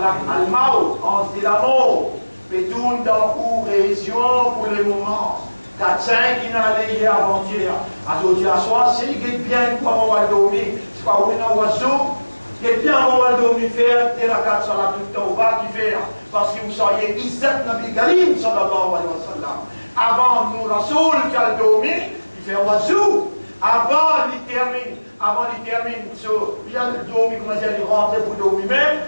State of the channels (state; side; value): inverted; both; correlation -1.00